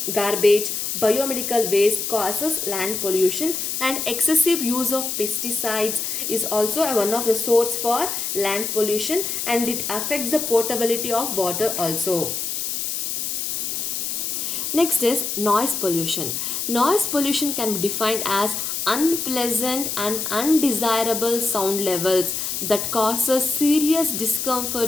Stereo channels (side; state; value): left; noise; hiss, 2 dB below the sound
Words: garbage, biomedical waste causes land pollution, and excessive use of pesticides is also one of the source for land pollution, and it affects the potability of water also. Next is noise pollution. Noise pollution can be defined as unpleasant and undesirable sound levels that causes serious